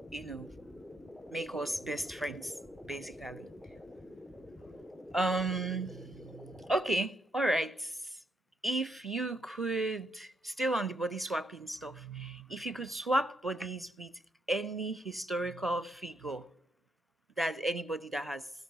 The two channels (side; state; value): both; normal; correlation 0.76